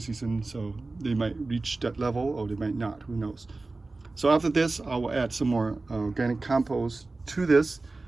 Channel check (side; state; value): left; quieter; 3.4 dB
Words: season, so they might reach that level or they might not. Who knows? So after this, I will add some more organic compost to this